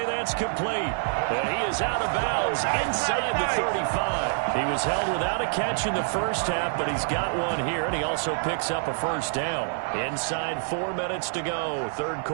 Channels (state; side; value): silent; left; digital silence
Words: That's complete. And he is out of bounds inside the 35. He was held without a catch in the first half, but he's got one here, and he also picks up a first down. Inside 4 minutes to go, 3rd